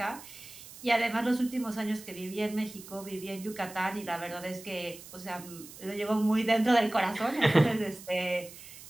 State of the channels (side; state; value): right; noise; hiss, 16 dB below the sound